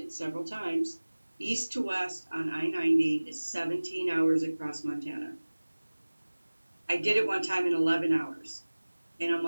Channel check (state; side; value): inverted; both; correlation -1.00